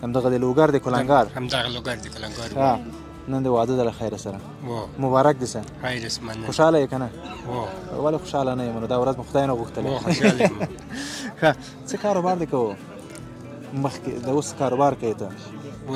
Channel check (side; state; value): both; identical; correlation 1.00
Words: همدغه د لوګر د کلنګار؟ همدغه لوګر د کلنګار. ښه نن د واده د له خیره سره مبارک دې شه. خیر اسمنه. خوشحاله یې که نه؟ ولې خوشحاله نه یم؟ نو دا ورځ مو خدای نه غوښتلی. خوشحاله یم. ښه څه کاروبار دې کوو؟ مخکې د اوس کاروبار کوې ته؟